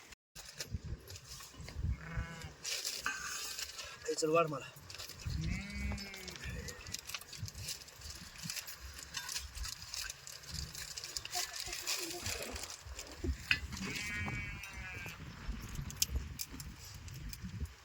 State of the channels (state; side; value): identical; both; correlation 1.00